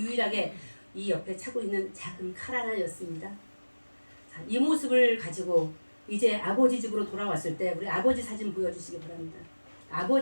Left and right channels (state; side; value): inverted; both; correlation -1.00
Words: 이 옆에 차고 있는 작은 칼 하나였습니다. 자, 이 모습을 가지고 이제 아버지 집으로 돌아왔을 때 우리 아버지 사진 보여주시기 바랍니다.